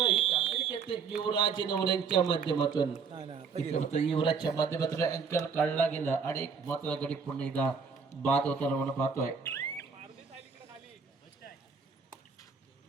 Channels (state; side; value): quieter; left; 5.7 dB